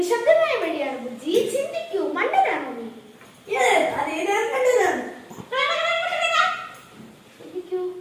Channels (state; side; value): identical; both; correlation 1.00